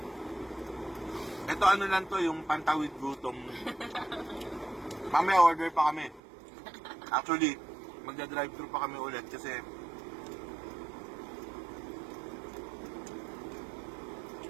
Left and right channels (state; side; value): drops out; left; at 6.2 s